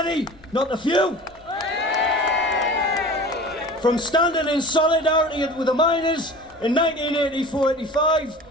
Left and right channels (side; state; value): left; noise; rumble, 27 dB below the sound